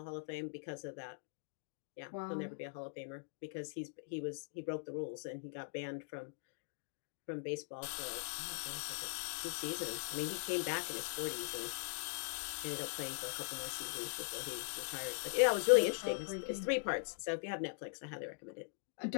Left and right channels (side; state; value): right; silent; digital silence